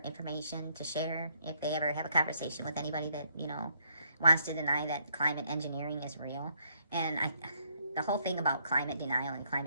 information to share if they ever have a conversation with anybody that, wants to deny that climate engineering is real. And the whole thing about climate denial and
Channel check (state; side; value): inverted; both; correlation -0.71